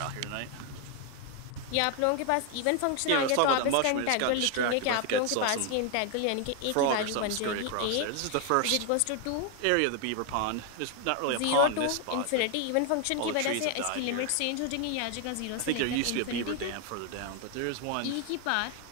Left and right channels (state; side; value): different; both; correlation 0.01